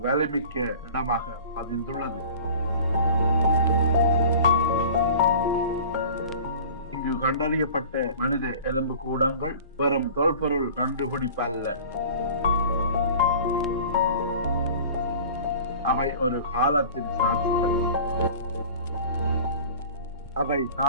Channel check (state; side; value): inverted; both; correlation -0.41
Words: வலிமிக்க இடமாக பதிந்துள்ளது. இங்கு கண்டறியப்பட்ட மனித எலும்பு கூடங்கள் வெறும் தொல்பொருள் கண்டுபிடிப்பு அல்ல. அவை ஒரு காலத்தின் சாட்சிகள். அவை